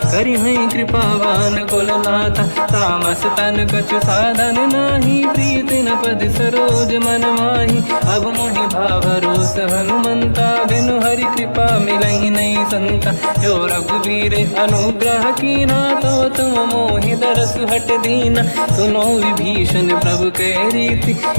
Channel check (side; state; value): both; inverted; correlation -1.00